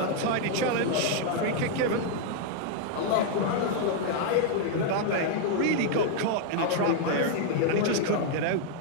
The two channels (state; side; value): different; both; correlation 0.00